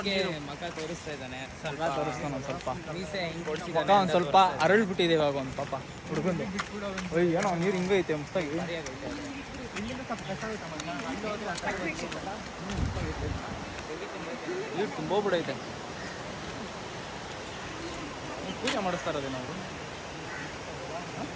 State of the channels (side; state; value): both; identical; correlation 1.00